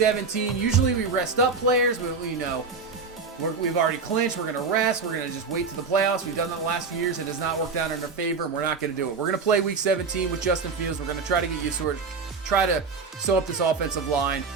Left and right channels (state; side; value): quieter; left; 4.8 dB